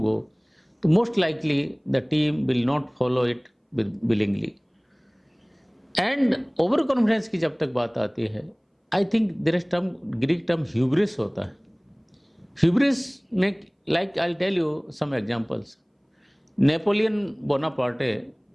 तो most likely the team will not follow it willingly. And over confidence की जब तक बात आती है, I think there is term, Greek term hubris होता है. Hubris में, like I tell you some examples. Napoleon Bonaparte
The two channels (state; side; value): identical; both; correlation 1.00